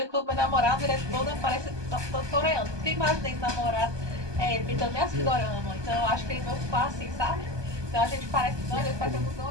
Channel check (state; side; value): late; left; 1.2 ms